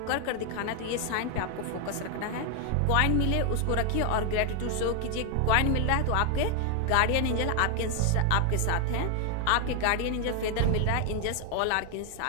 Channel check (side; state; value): both; different; correlation 0.00